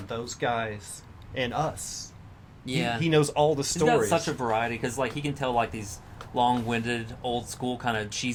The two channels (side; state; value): both; identical; correlation 1.00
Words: those guys and us. Yeah. He knows all the stories. He's got such a variety because like he can tell like these long-winded, old school kind of